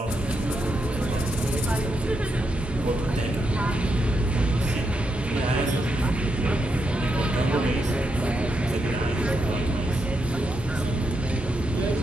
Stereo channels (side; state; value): both; normal; correlation 0.82